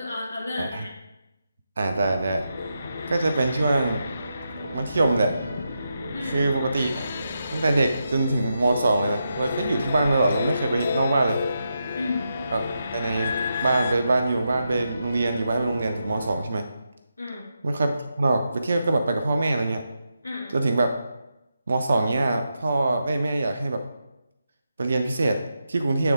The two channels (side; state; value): both; inverted; correlation -0.86